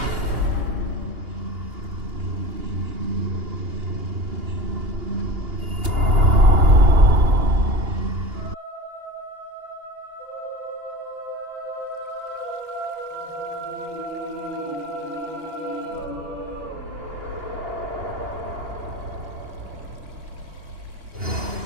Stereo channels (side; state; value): left; late; 2.8 ms